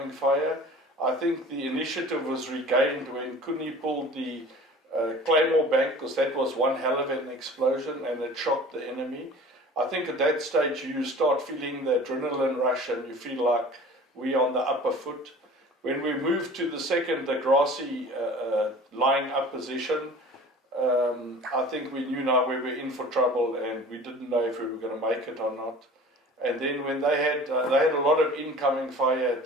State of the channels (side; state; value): both; normal; correlation 0.43